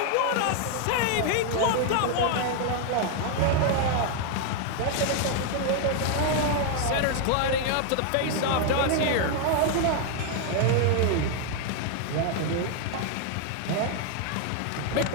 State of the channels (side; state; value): both; different; correlation 0.00